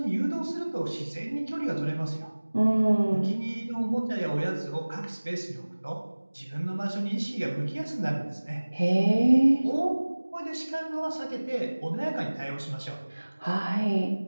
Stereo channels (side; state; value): both; inverted; correlation -1.00